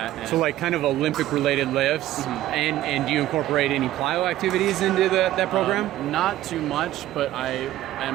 And so like kind of Olympic related lifts. Mm-hmm. And do you incorporate any plyo activities into that program? Not too much, but I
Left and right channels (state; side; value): quieter; left; 14.2 dB